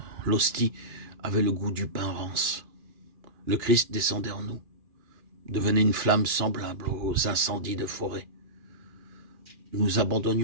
l'hostie avait le goût du pain rance. Le Christ descendait en nous, devenait une flamme semblable aux incendies de forêt. Nous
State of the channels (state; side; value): late; left; 2.9 ms